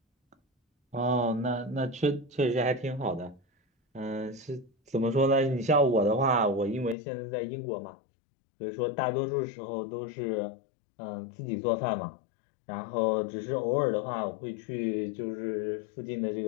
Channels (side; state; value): right; drops out; at 7.0 s